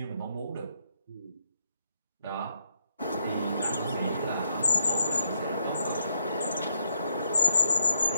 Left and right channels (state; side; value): inverted; both; correlation -0.75